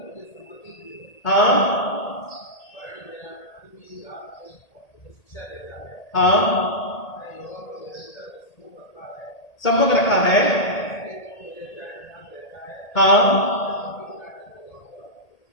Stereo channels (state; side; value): late; right; 1.8 ms